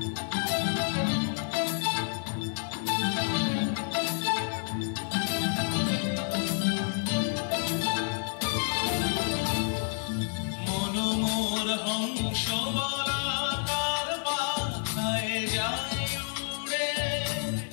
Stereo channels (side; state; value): right; silent; 58 dB below the other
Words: মনোমর হংস বলাকার পাখায় যায় উড়ে